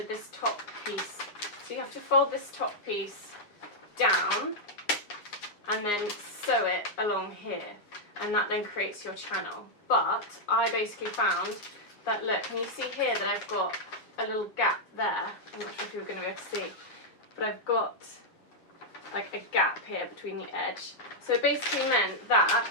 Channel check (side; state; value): right; late; 9.7 ms